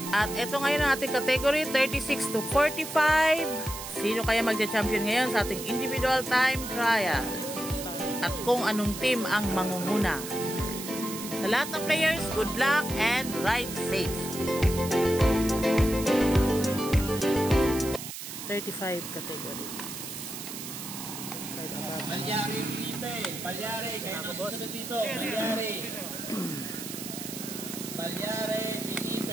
At ito ngayon ang ating category 36 to 45. Sino kaya magja-champion ngayon sa ating individual time trial? At kung anong team ang mangunguna? Sa lahat ng players, good luck and ride safe. 35 category. Palyari, Felipe. Palyari, kayo na susunod dito. Palyari. Palyari,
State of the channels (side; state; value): right; noise; hiss, 9 dB below the sound